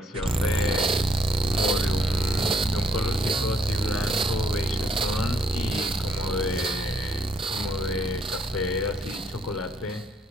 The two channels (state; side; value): normal; both; correlation 0.70